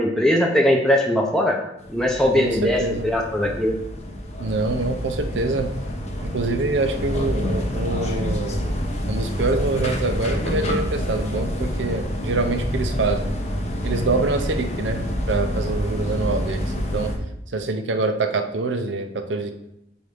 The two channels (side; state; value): both; normal; correlation 0.50